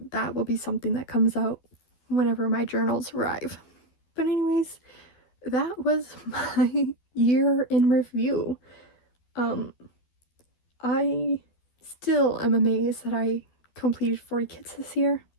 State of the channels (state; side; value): late; right; 12 ms